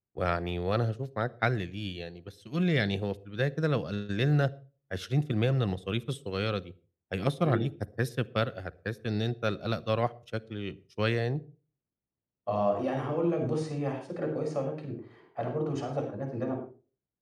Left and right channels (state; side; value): identical; both; correlation 1.00